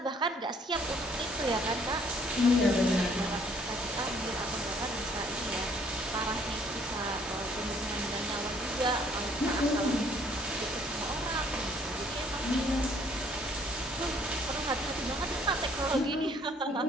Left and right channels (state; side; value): normal; both; correlation 0.62